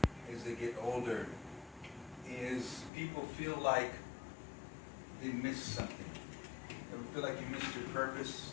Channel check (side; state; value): right; drops out; at 2.9 s